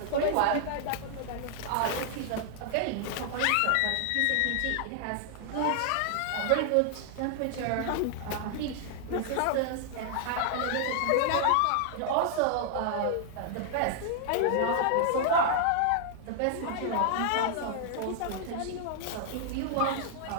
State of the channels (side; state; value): both; different; correlation 0.00